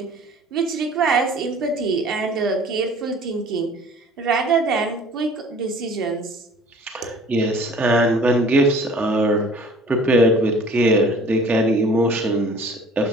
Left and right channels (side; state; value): both; normal; correlation 0.49